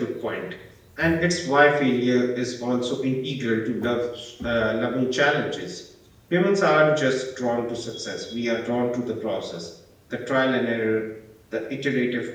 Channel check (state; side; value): identical; both; correlation 1.00